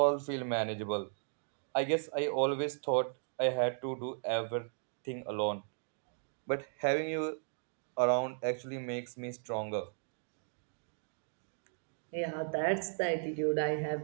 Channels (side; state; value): left; silent; digital silence